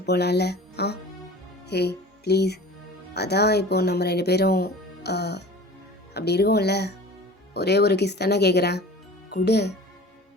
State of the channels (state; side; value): normal; both; correlation 0.41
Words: போகலாம்ல. ஆ ஹே ப்ளீஸ். அதான் இப்போ நம்ம 2 பேரும் அப்படி இருக்கோம்ல, ஒரே ஒரு கிஸ் தானே கேட்குறேன், குடு.